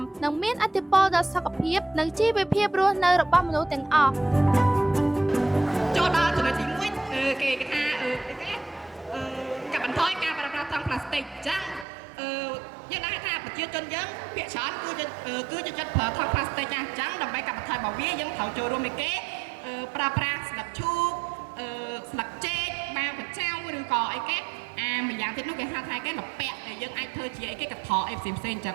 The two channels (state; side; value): drops out; left; at 11.9 s